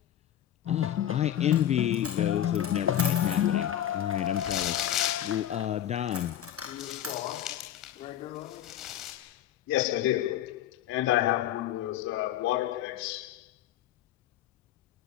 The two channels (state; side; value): quieter; right; 11.3 dB